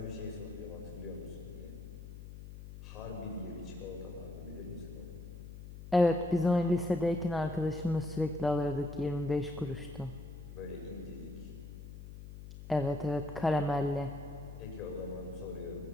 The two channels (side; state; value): left; noise; hum, 12 dB below the sound